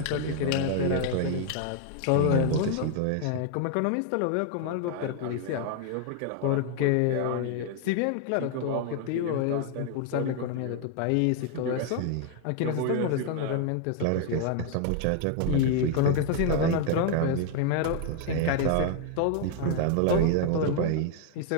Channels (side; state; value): both; different; correlation 0.00